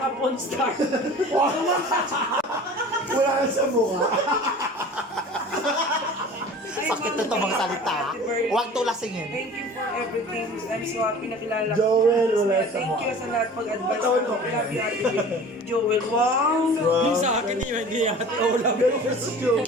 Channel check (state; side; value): normal; both; correlation 0.42